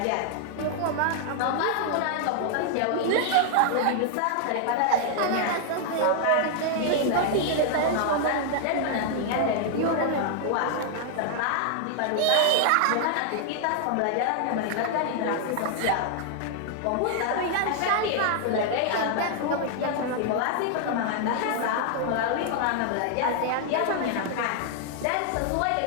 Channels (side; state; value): both; different; correlation 0.00